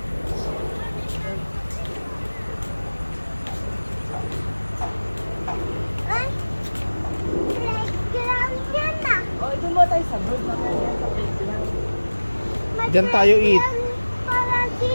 Ay, playground yan ah. O, doon mo tayo sa bird naman yan, sa playground. May Diyan tayo eat. playground Para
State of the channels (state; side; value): inverted; both; correlation -1.00